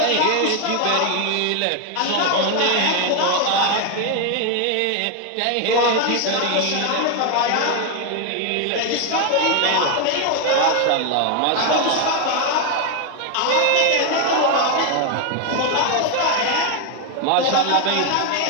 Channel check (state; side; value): different; both; correlation 0.01